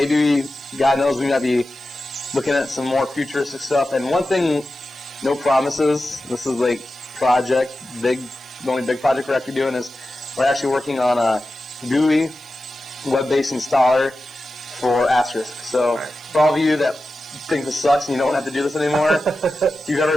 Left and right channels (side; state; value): right; noise; hiss, 27 dB below the sound